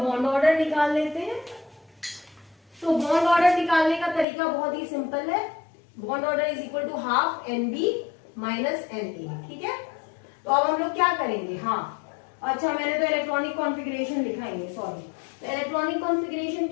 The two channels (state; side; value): drops out; right; at 4.2 s